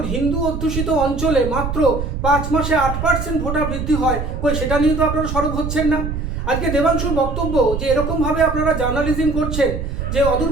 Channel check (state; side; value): noise; right; rumble, 4 dB below the sound